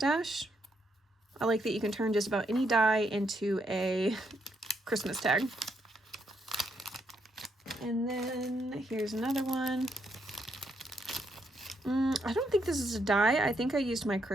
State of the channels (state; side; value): normal; both; correlation 0.77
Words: I like that you can turn just about any die into a Christmas tag. And then here's another one. I don't think this is a die. I think I used my